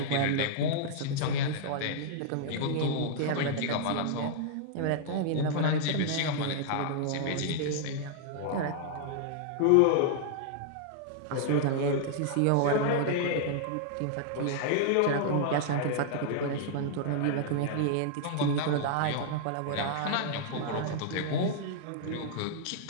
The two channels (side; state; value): both; different; correlation -0.01